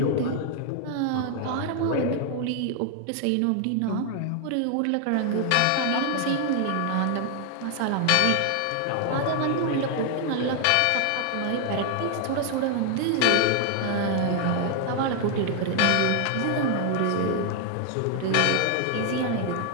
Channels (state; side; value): different; both; correlation 0.00